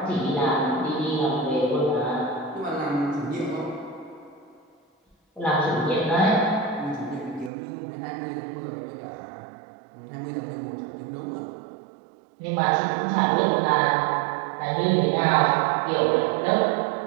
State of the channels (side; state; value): left; drops out; at 7.5 s